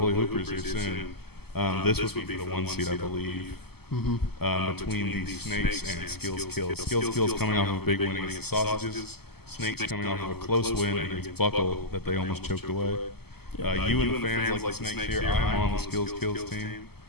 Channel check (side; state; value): right; late; 0.96 ms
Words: Hoopers here soon, this would be for the 1 seed, I believe. Between the Snakes and Skills Kills. Skills Kills coming off of a big win against the Sausages. Snakes coming off of a close win against Buckle that they almost choked away. You and the fans like the Snakes here. I am on the Skills Kills team.